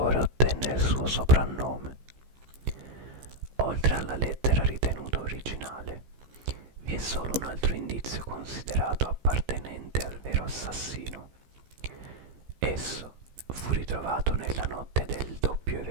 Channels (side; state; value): left; late; 15 ms